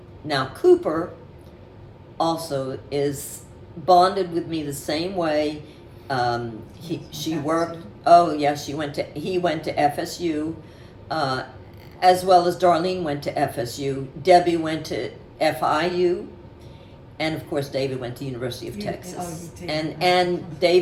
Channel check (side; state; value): both; identical; correlation 1.00